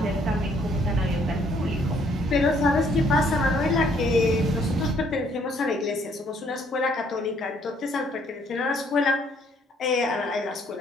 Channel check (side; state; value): both; normal; correlation 0.66